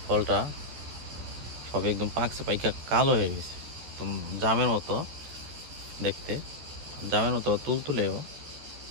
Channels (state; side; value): late; left; 13 ms